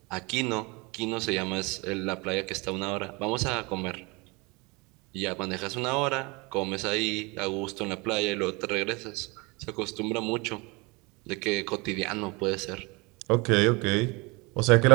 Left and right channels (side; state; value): left; quieter; 26.9 dB